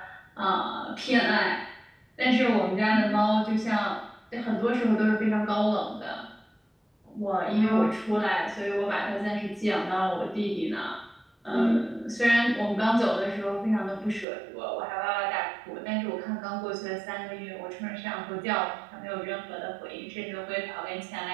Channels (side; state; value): left; drops out; at 14.2 s